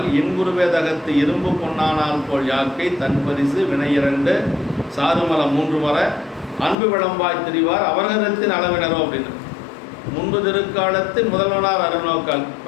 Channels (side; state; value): right; drops out; at 6.8 s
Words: இன்புருவே தகத்து இரும்பு பொன்னானால் போல் யாக்கை தன் பரிசு வினையிரண்டு சாருமலம் 3 வர அன்பு விளம்பாய் திரிவார் அவர்களின் அளவினரோ அப்படின்னு. முன்பு திருக்காலத்தின் முதல்வனார் அருள் நோக்கால்